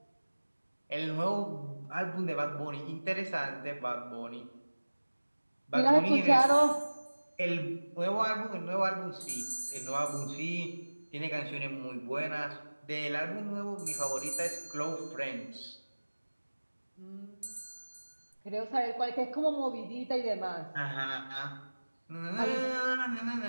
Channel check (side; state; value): both; inverted; correlation -1.00